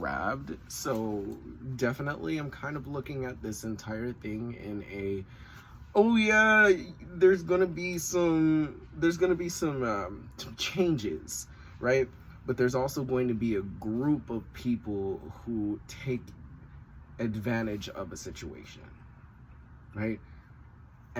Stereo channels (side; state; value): both; identical; correlation 1.00